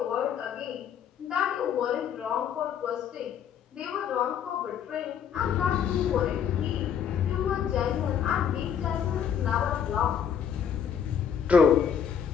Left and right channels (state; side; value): quieter; right; 8.1 dB